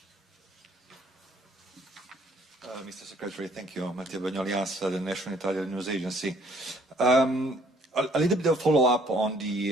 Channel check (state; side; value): normal; both; correlation 0.61